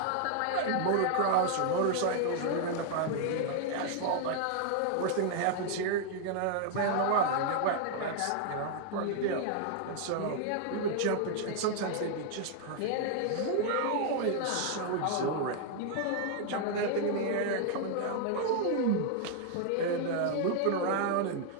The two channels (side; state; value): both; different; correlation 0.00